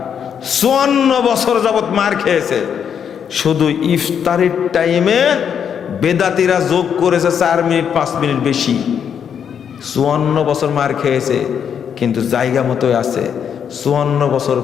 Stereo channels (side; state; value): right; quieter; 7.9 dB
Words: 54 বছর যাবত মার খেয়েছে। শুধু ইফতারের টাইমে বেদাতিরা যোগ করেছে 4 মিনিট 5 মিনিট বেশি। 54 বছর মার খেয়েছে, কিন্তু জায়গা মতোই আছে। 54 বছর